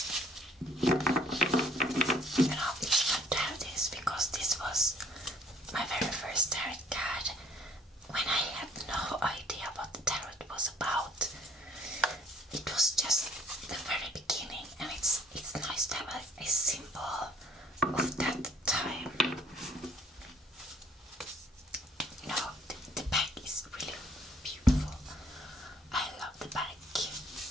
you know, it's fun to have this because this was my very first tarot card when I had no idea what the tarot was about. It was just the very beginning, and it's nice to have a symbol of that time. You know, the back is really beautiful. I love the back.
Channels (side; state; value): both; normal; correlation 0.59